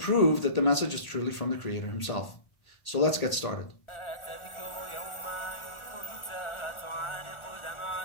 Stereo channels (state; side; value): late; right; 1.4 ms